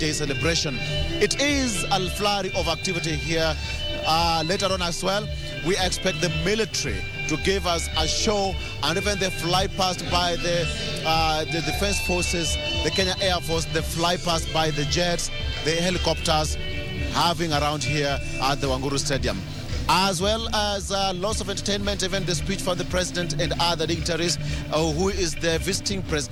celebration. It is a flurry of activity here. Later on as well, we expect the military to give us a show, and even they fly past by the Defense Forces, the Kenya Air Force, they fly past by the jets, the helicopters, having around here at the Wanguru Stadium. As well as lots of entertainment, even the speech from the president and other dignitaries, who is the visiting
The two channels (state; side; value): identical; both; correlation 1.00